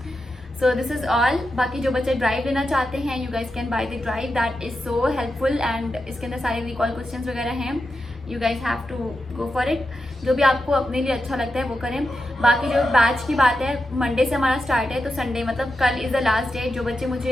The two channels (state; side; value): normal; both; correlation 0.89